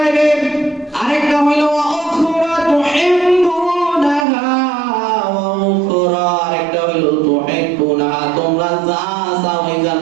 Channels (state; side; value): drops out; left; at 4.2 s